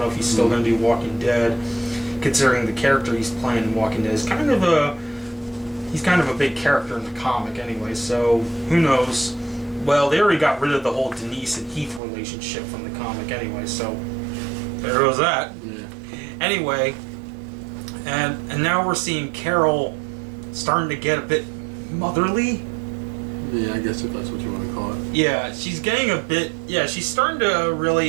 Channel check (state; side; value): drops out; left; at 12.0 s